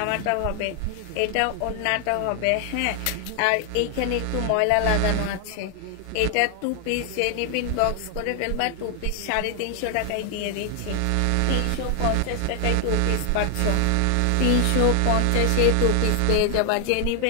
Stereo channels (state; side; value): different; both; correlation 0.00